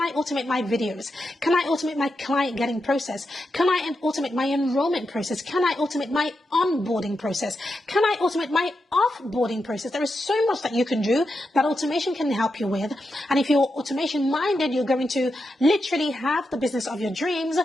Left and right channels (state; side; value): normal; both; correlation 0.87